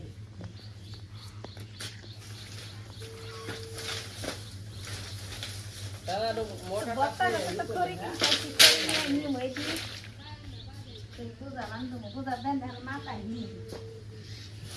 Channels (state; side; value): identical; both; correlation 1.00